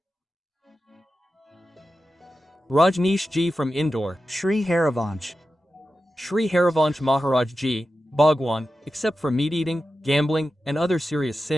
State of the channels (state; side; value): normal; both; correlation 0.92